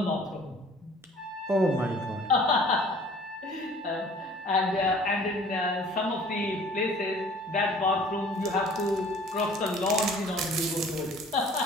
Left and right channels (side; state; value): both; normal; correlation 0.51